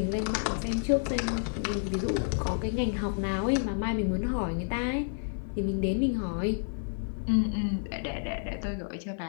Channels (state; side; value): silent; right; 58 dB below the other